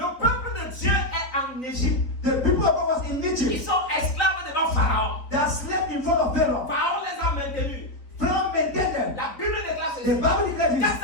peuple de Dieu est en Égypte. the people of God was in Ils Egypt. sont esclaves devant Pharaon. They are slaves in front of Pharaoh. Pharaon les a maintenus. Pharaoh maintained them. La Bible déclare The ceci. Bible declares this.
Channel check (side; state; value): right; late; 3.9 ms